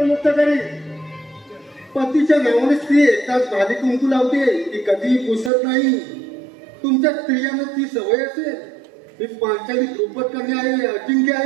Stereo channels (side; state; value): left; drops out; at 5.5 s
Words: करेन. पतीच्या नावाने स्त्री एकदाच भाली कुंकू लावते, ती कधीही पुसत नाही. तुमच्या स्त्रियांना ती सवय असेल. मी पांचाली द्रुपद कन्या आहे, अजिंक्य